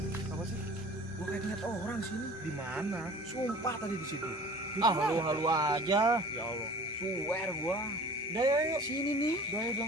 Apa sih? Gua kayak ngeliat orang sini. Di mana? Sumpah tadi di situ. Halu aja. Ya Allah. Swear gua. Udah yuk. Sini nih. Gaya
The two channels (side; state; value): both; normal; correlation 0.44